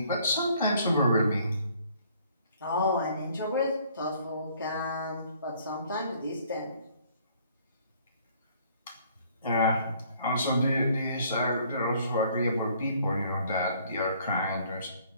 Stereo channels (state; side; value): inverted; both; correlation -0.60